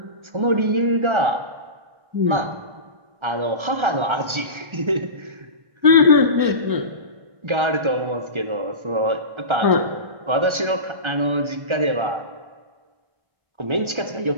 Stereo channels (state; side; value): late; left; 1.3 ms